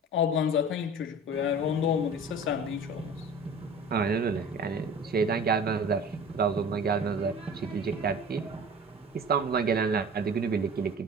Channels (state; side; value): normal; both; correlation 0.40